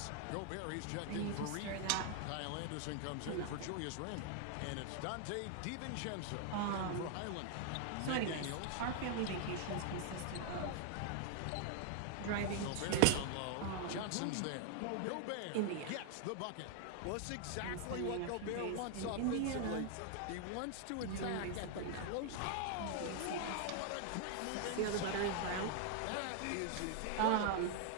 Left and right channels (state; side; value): different; both; correlation 0.00